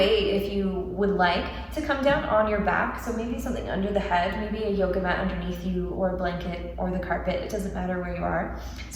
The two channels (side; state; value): both; identical; correlation 1.00